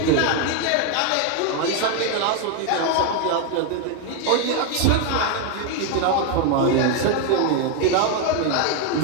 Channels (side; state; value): both; different; correlation 0.01